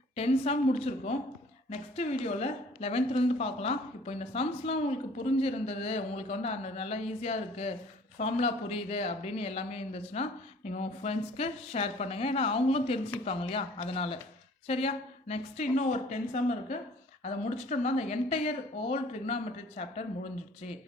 10 some முடிச்சிருக்கோம். Next வீடியோவில் 11th பார்க்கலாம். இப்போ இந்த சம்ஸ்லாம் உங்களுக்கு புரிஞ்சிருந்தது, உங்களுக்கு வந்து நல்லா ஈஸியாக இருக்குது, ஃபார்முலா புரியுது அப்படின்னு எல்லாமே இருந்துச்சுன்னா நீங்கள் உங்கள் ஃப்ரெண்ட்ஸ்க்கு ஷேர் பண்ணுங்கள். ஏன்னா அவங்களும் தெரிஞ்சுப்பாங்க இல்லையா, அதனால். சரியா? நெக்ஸ்ட்டு இன்னும் ஒரு 10 சம் இருக்குது. அதை முடிச்சிட்டோம்னா அந்த என்டையர் ஓல் ட்ரிக்னாமெட்ரி சாப்டர் முடிஞ்சிடுச்சு.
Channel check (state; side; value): normal; both; correlation 0.52